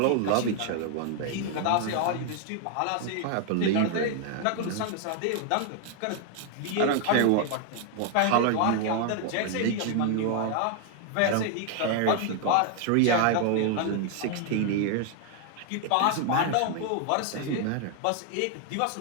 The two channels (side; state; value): both; different; correlation 0.00